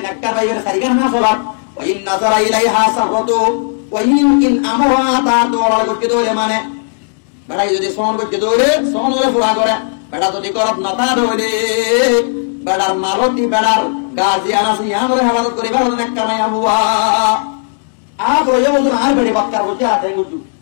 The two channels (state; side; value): silent; right; digital silence